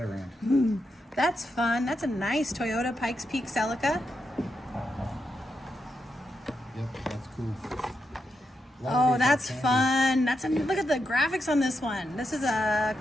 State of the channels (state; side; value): normal; both; correlation 0.85